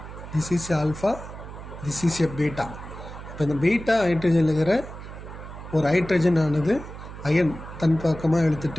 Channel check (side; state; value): right; noise; hum, 12 dB below the sound